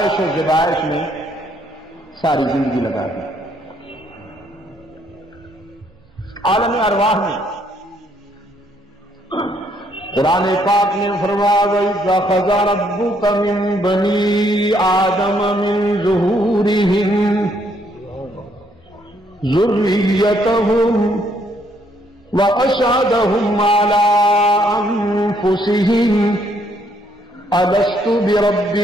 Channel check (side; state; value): both; normal; correlation 0.69